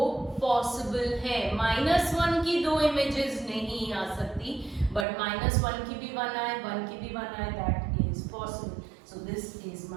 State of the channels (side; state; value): left; drops out; at 5.1 s